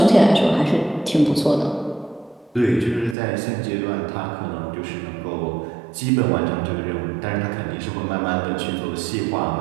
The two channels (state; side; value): drops out; left; at 3.2 s